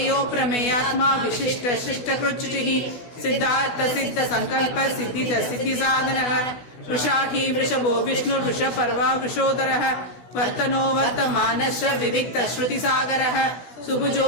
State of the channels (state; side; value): late; right; 16 ms